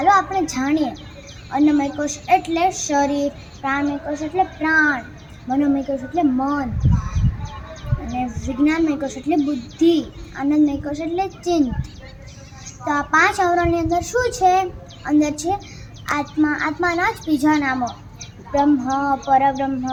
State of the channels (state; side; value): identical; both; correlation 1.00